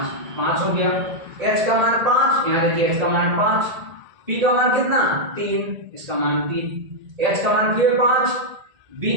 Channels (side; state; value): left; late; 1.8 ms